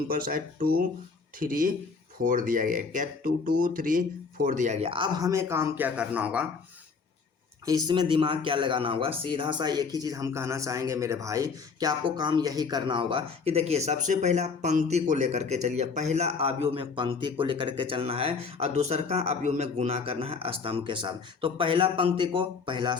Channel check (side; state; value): right; quieter; 5.0 dB